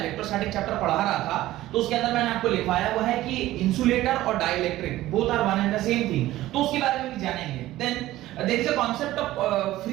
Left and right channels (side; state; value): left; quieter; 15.7 dB